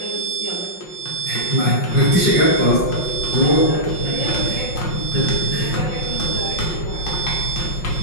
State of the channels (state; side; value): late; right; 5.5 ms